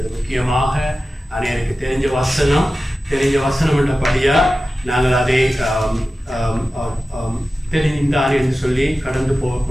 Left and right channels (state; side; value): normal; both; correlation 0.94